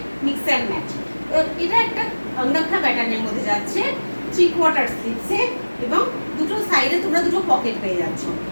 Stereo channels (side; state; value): both; inverted; correlation -1.00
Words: মিক্স অ্যান্ড ম্যাচ। এটা একটা অঙ্গাক্ষা প্যাটার্নের মধ্যে যাচ্ছে, 3/4 স্লিভসে এবং দুটো সাইডে তোমরা দুটো পকেট পেয়ে যাচ্ছ।